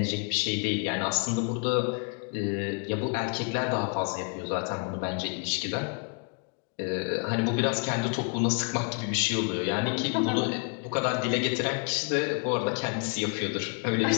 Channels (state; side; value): quieter; right; 38.1 dB